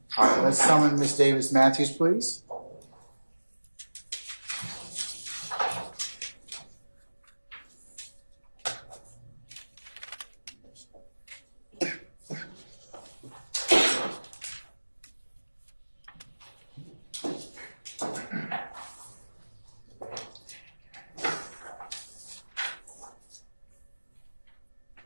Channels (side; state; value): both; inverted; correlation -1.00